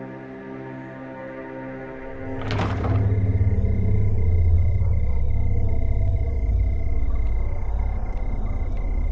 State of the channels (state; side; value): identical; both; correlation 1.00